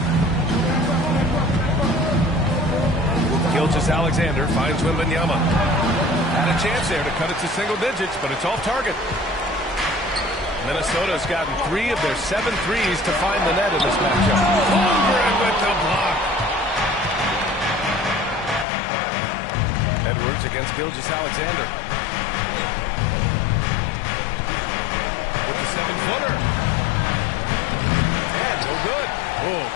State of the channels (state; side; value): drops out; right; at 18.7 s